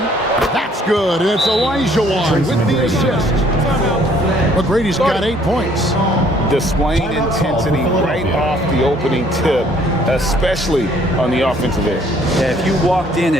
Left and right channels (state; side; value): normal; both; correlation 0.61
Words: That's good. And it's Olajuwon with the assist. McGrady's got 8 points. Displaying intensity right off the opening tip, especially on the offensive end. Yeah, if you walked in